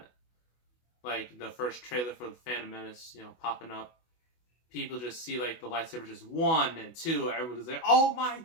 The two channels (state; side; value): late; right; 24 ms